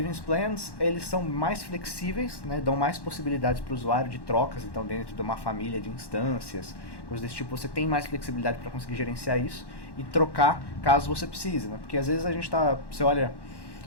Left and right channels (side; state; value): right; late; 1.1 ms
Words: plans, eles são mais flexíveis, né, dão mais possibilidades para o usuário de trocas, então dentro de uma família de instâncias, coisas desse tipo, você tem mais flexibilidade para conseguir gerenciar isso e trocar caso você precise, né? Porque às vezes você olha,